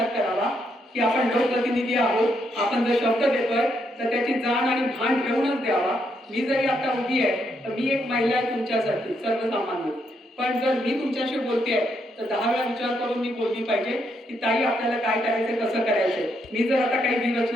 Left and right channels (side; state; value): both; normal; correlation 0.77